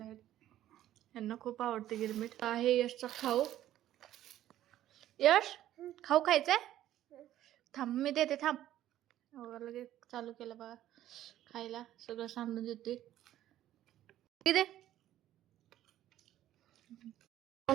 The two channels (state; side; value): quieter; left; 12.9 dB